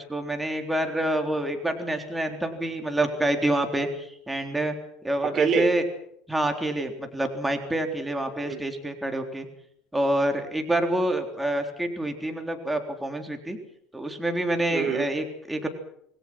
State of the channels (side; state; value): both; normal; correlation 0.81